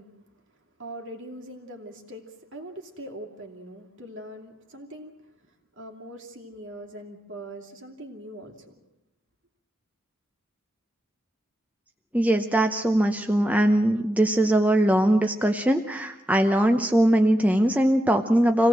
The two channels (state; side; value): normal; both; correlation 0.87